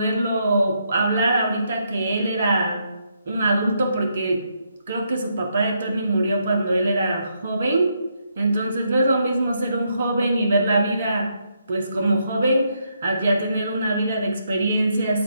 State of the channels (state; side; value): inverted; both; correlation -0.77